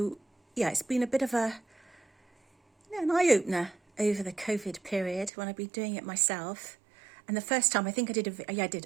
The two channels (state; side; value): drops out; left; at 5.3 s